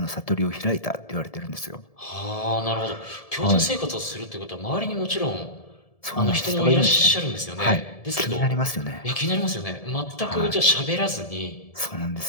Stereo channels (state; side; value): late; right; 1.7 ms